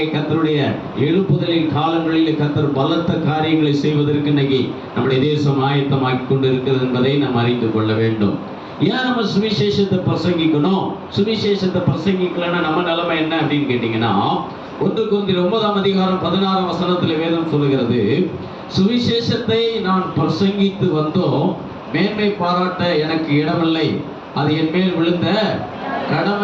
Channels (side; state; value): both; identical; correlation 1.00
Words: கர்த்தருடைய எழுப்புதலின் காலங்களில் கர்த்தர் பலத்த காரியங்களை செய்வதற்கு இன்னைக்கு நம்முடைய தேசம் ஆயத்தமாக்கி கொண்டு இருக்கிறது என்பதை நாம் அறிந்து கொள்ள வேண்டும். ஏன் நம்ம சுவிசேஷத்தை பிரசங்கிக்கணும்? சுவிசேஷத்தை பிரசங்கிக்கலன்னா நம்ம நிலைமை என்ன அப்படின்னு கேட்டீங்கன்னா, 1 கொரிந்தியர் 9ஆம் அதிகாரம் 16ஆம் வசனத்துல வேதம் சொல்லுகிறது, சுவிசேஷத்தை நான் பிரசங்கித்து வந்தோம், மேன்மை பாராட்ட எனக்கு இடமில்லை, அது என் மேல் விழுந்த